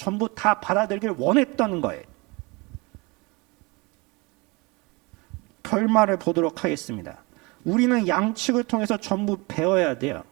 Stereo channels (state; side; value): quieter; left; 26.5 dB